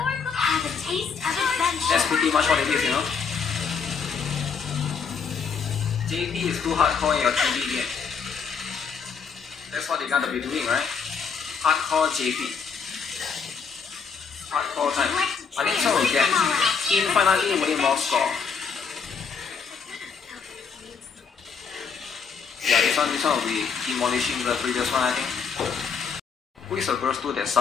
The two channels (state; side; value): quieter; right; 5.9 dB